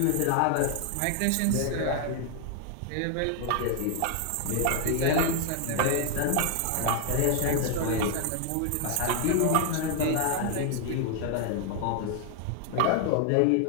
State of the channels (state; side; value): different; both; correlation 0.00